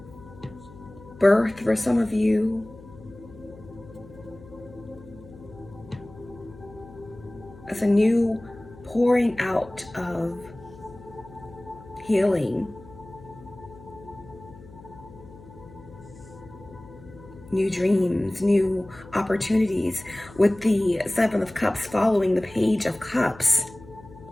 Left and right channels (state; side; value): noise; left; hum, 20 dB below the sound